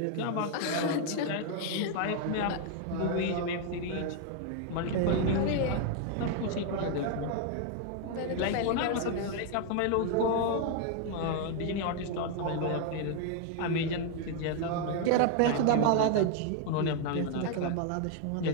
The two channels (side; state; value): both; different; correlation 0.00